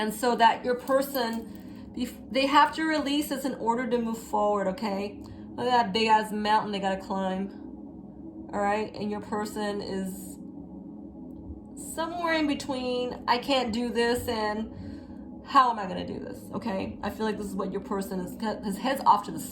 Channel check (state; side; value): identical; both; correlation 1.00